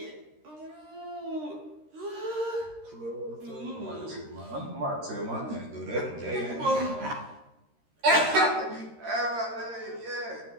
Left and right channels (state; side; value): late; left; 13 ms